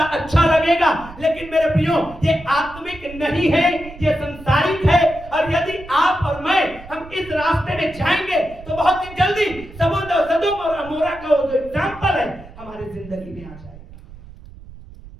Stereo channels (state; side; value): noise; right; rumble, 18 dB below the sound